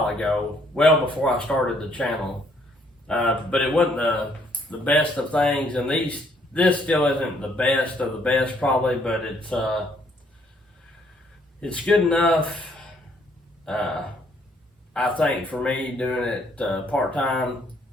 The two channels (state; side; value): normal; both; correlation 0.67